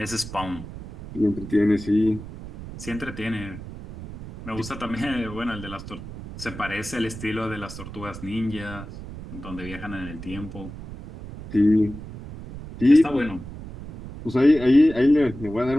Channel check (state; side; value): noise; right; rumble, 12 dB below the sound